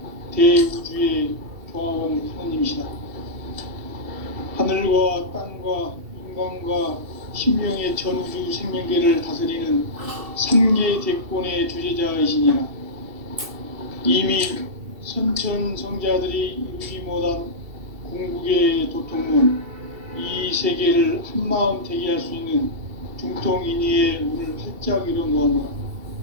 대우주의 조화원 하나님이시다. 하늘과 땅과 인간과 신명의 전우주 생명계를 다스리는 3개 대권의 주제자이시니라. 이미 선천 성자들이 이루지 못한 궁극의 도통문, 이 세계를 한마음 되게 할 수 있는 중통인의의 문을 활짝 열어놓았노라.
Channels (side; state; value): left; late; 2.7 ms